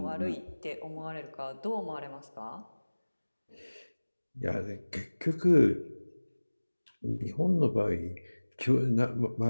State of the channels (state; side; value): inverted; both; correlation -1.00